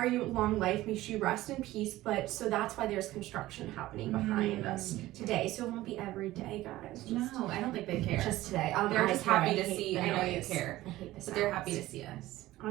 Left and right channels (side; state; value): left; quieter; 16.5 dB